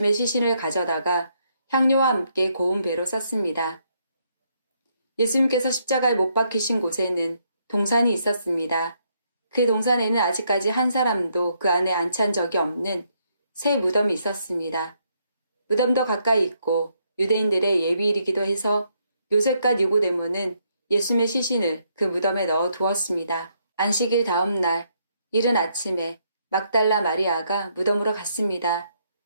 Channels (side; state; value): both; inverted; correlation -0.74